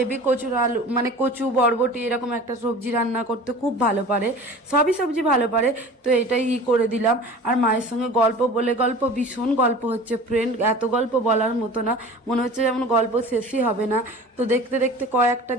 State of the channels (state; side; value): normal; both; correlation 0.40